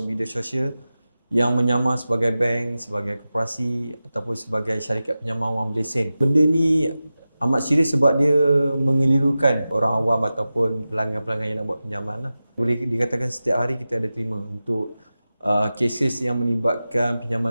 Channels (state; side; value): inverted; both; correlation -0.94